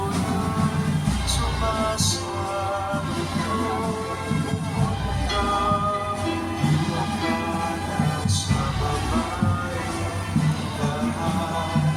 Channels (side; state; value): both; identical; correlation 1.00